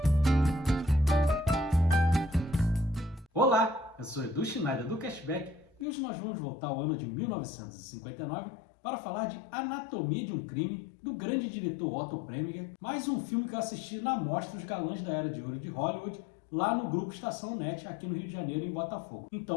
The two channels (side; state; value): right; drops out; at 5.9 s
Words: Olá, eu sou Edu Schneider do Cashback e hoje nós vamos voltar ao ano de 1959 para falar de Anatomia de um Crime, do grande diretor Otto Preminger, mais um filme que eu assisti na Mostra dos Galãs da Era de Ouro de Hollywood, lá no Grupo Estação Net, aqui no Rio de Janeiro, em Botafogo.